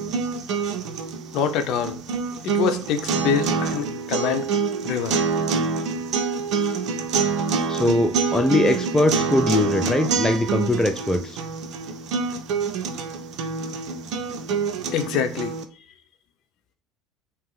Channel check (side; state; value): both; normal; correlation 0.37